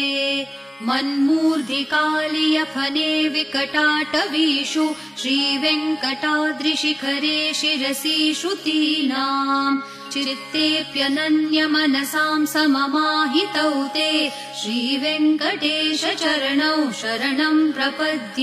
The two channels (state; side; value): identical; both; correlation 1.00